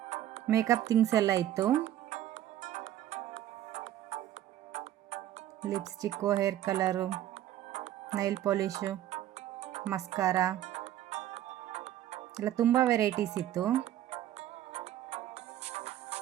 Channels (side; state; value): left; quieter; 12.4 dB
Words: ಮೇಕಪ್ ಥಿಂಗ್ಸ್ ಎಲ್ಲ ಇತ್ತು. Lipstick, hair colour, nail polish, mascara ಎಲ್ಲ ತುಂಬ ವೆರೈಟೀಸ್ ಇತ್ತು.